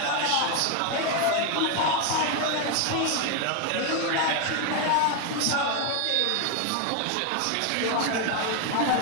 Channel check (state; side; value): different; both; correlation 0.01